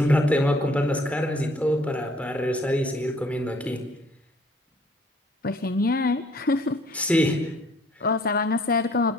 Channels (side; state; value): both; normal; correlation 0.59